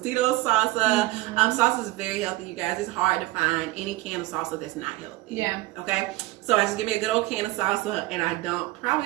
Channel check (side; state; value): left; quieter; 18.9 dB